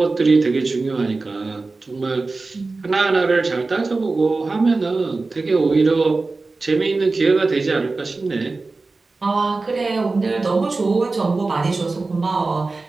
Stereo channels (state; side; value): quieter; left; 3.6 dB